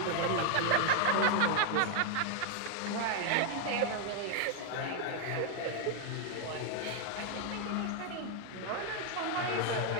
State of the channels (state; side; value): different; both; correlation 0.01